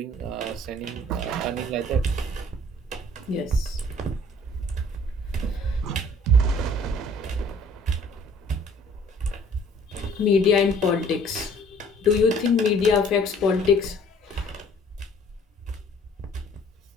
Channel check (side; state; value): both; normal; correlation 0.55